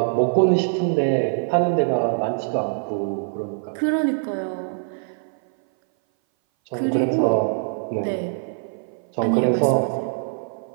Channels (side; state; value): left; silent; 59 dB below the other